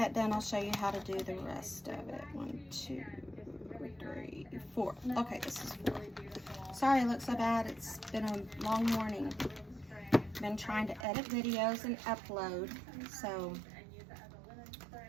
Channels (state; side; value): drops out; left; at 11.1 s